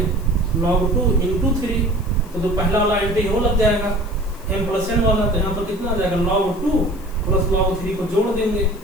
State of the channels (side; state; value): left; noise; hiss, 24 dB below the sound